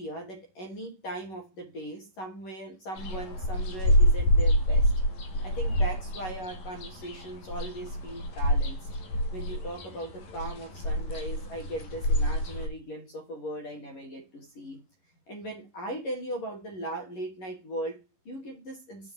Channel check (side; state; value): right; late; 11 ms